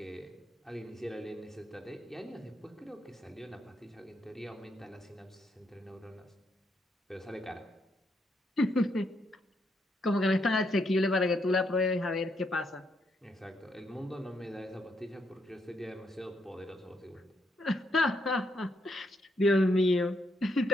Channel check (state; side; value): normal; both; correlation 0.77